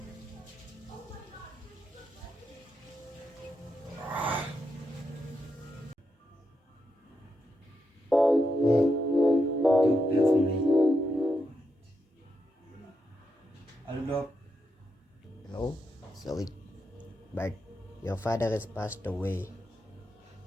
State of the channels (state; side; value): normal; both; correlation 0.84